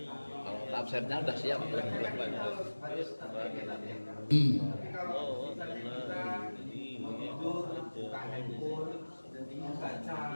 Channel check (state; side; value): inverted; both; correlation -1.00